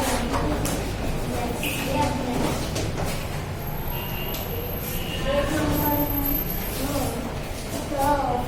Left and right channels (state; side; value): identical; both; correlation 1.00